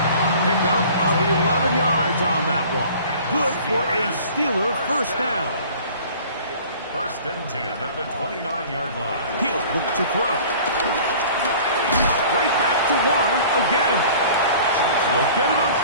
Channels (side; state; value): both; inverted; correlation -0.46